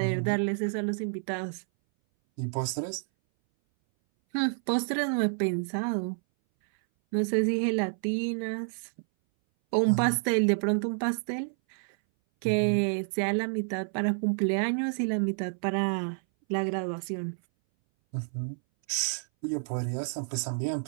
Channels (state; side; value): silent; left; 58 dB below the other